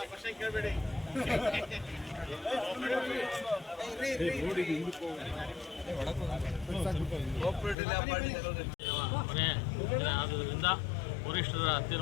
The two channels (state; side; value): drops out; right; at 7.8 s